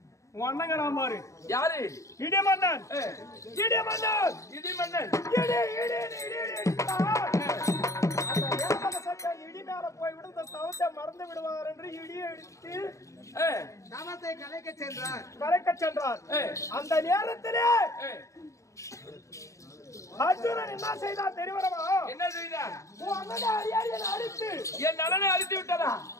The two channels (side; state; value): right; late; 0.15 ms